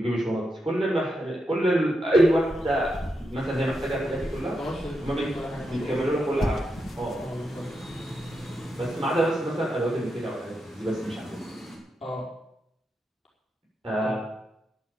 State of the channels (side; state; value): both; normal; correlation 0.85